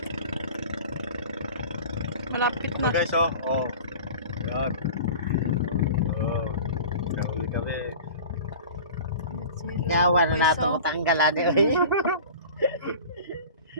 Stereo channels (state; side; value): inverted; both; correlation -0.39